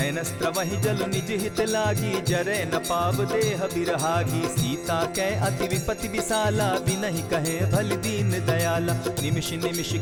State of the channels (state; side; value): identical; both; correlation 1.00